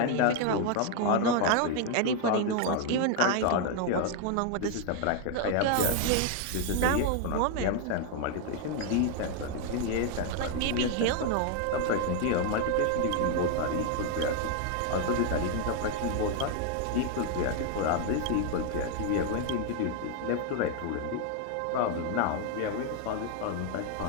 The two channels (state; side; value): different; both; correlation 0.01